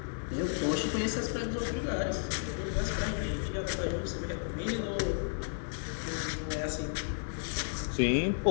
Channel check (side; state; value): right; silent; digital silence